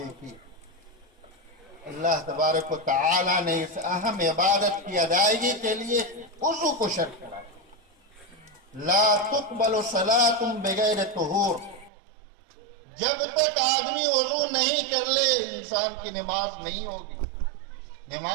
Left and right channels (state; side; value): drops out; left; at 11.9 s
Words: اللہ تبارک و تعالیٰ نے اس اہم عبادت کی ادائیگی کے لیے وضو کو شرط کرا۔ لا تقبل صلاۃ بغیر طہور، جب تک آدمی وضو نہیں کر لے انسان کی نماز نہیں ہوگی،